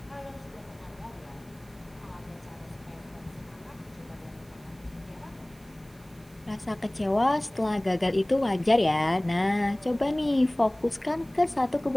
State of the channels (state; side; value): noise; right; hiss, 28 dB below the sound